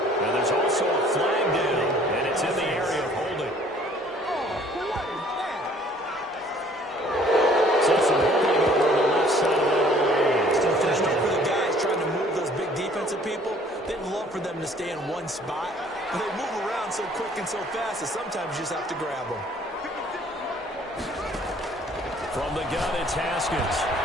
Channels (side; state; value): both; normal; correlation 0.56